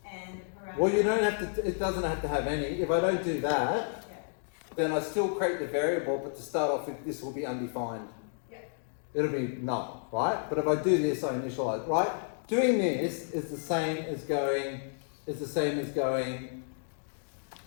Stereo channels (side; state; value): right; silent; digital silence